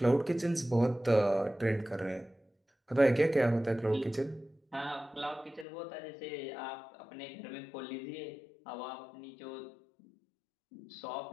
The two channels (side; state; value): right; drops out; at 5.7 s